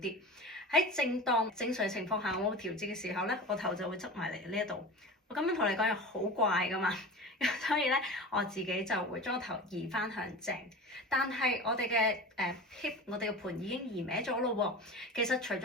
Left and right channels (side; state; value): both; normal; correlation 0.32